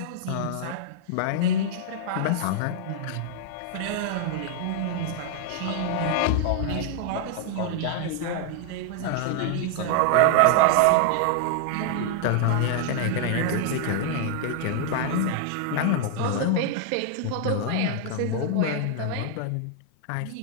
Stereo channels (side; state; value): both; different; correlation 0.00